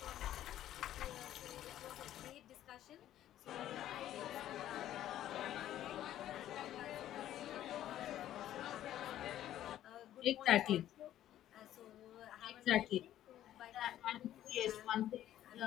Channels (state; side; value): quieter; right; 12.4 dB